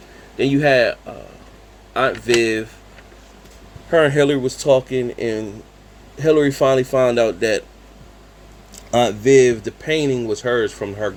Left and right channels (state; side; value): identical; both; correlation 1.00